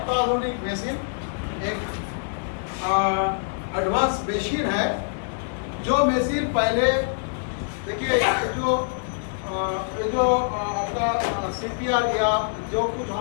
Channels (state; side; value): silent; right; digital silence